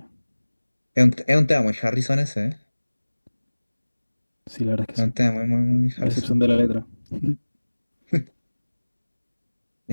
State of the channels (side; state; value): both; inverted; correlation -1.00